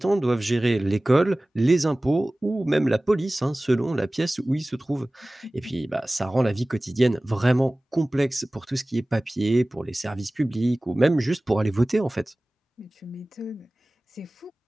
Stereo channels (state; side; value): normal; both; correlation 0.98